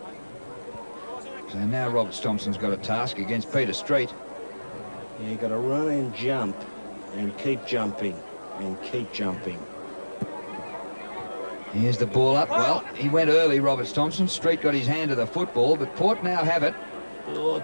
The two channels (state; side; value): inverted; both; correlation -1.00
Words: So now Roberts-Thompson's got a task against Peter Street. Yeah, you've got to run and jump and keep jumping and keep jumping. Here's the ball up. Well, he went early, Roberts-Thompson. Street got his hand to the football, but Port now have it. Oh,